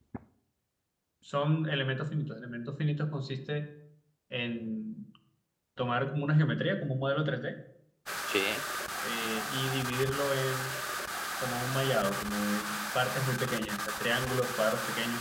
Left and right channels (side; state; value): both; identical; correlation 1.00